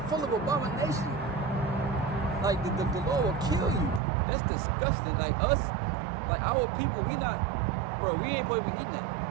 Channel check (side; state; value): left; drops out; at 4.0 s